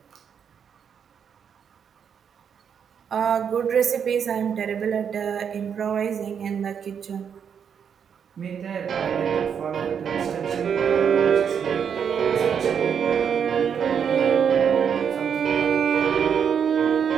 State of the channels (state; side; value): quieter; left; 7.5 dB